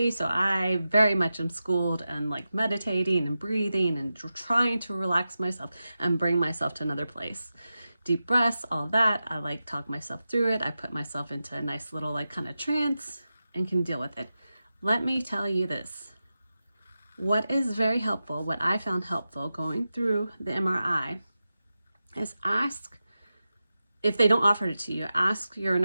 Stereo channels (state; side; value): inverted; both; correlation -0.93